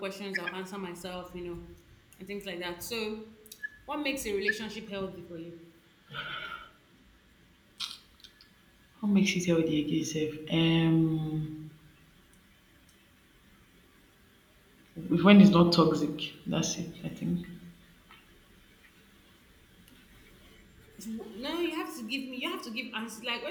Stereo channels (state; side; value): identical; both; correlation 1.00